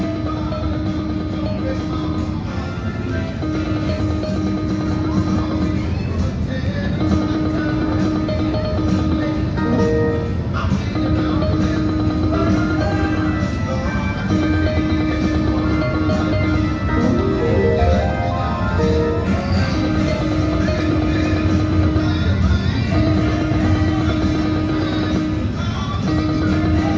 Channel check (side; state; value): both; identical; correlation 1.00